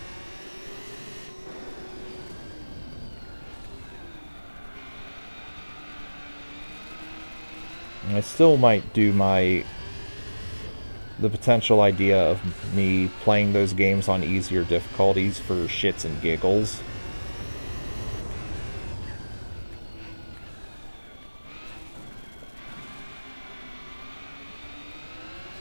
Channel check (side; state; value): both; inverted; correlation -1.00